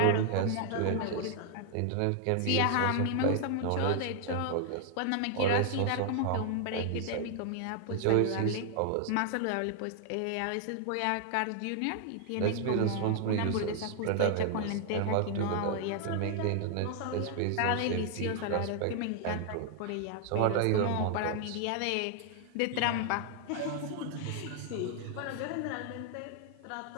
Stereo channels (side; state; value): both; different; correlation 0.00